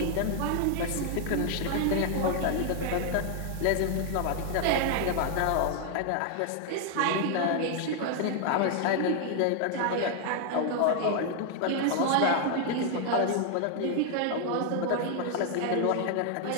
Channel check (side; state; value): both; different; correlation 0.00